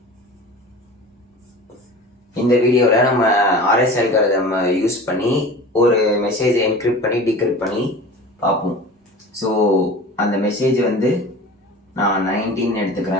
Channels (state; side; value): normal; both; correlation 0.37